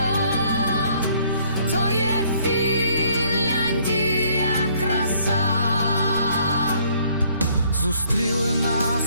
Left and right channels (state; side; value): inverted; both; correlation -0.63